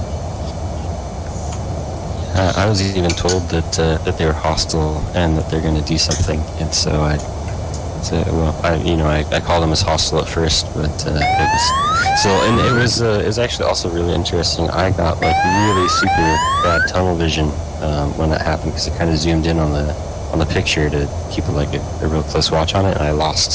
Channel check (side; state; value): both; identical; correlation 1.00